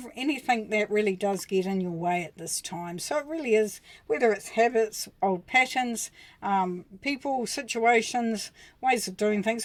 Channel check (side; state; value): both; identical; correlation 1.00